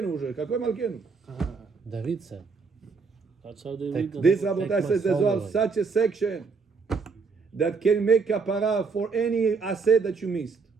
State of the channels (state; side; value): quieter; left; 4.8 dB